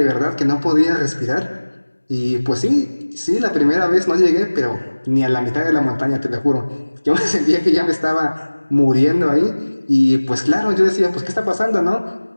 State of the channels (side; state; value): both; inverted; correlation -1.00